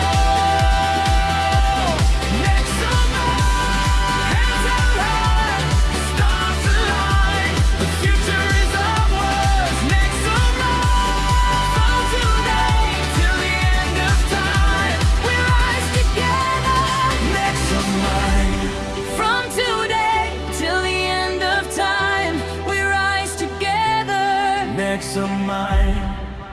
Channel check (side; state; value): both; identical; correlation 1.00